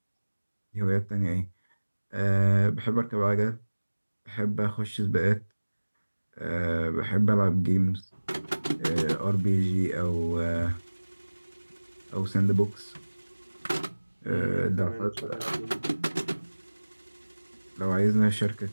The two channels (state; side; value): inverted; both; correlation -1.00